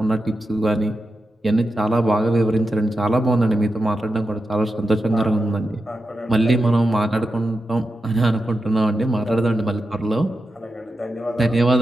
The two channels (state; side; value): normal; both; correlation 0.89